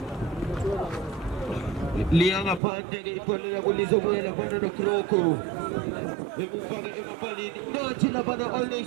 Liang apante che pone la bolisa buona fanno no croco e paga e mapali no ci la vanno all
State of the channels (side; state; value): left; drops out; at 2.6 s